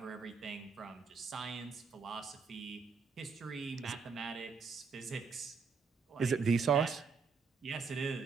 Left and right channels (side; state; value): left; quieter; 5.3 dB